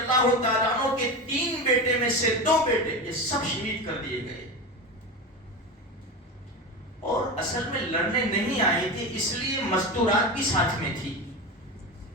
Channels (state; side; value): normal; both; correlation 0.23